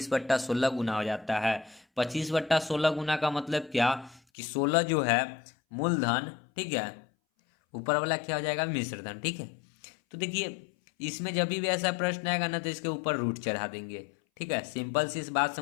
गुना हो जाता है। 25/16 गुना का मतलब क्या कि 16 जो है मूलधन, ठीक है, ऊपर वाला क्या हो जाएगा मिश्रधन। ठीक है, तो देखिए इसमें जब भी ऐसा प्रश्न आएगा ना तो इसके ऊपर रूट चढ़ा देंगे। ठीक है, सिंपल सी इस बात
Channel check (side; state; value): right; drops out; at 4.2 s